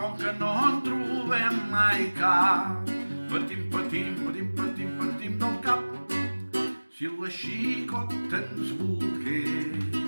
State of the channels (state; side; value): inverted; both; correlation -1.00